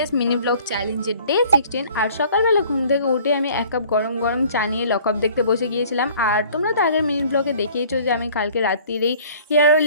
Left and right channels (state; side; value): inverted; both; correlation -0.52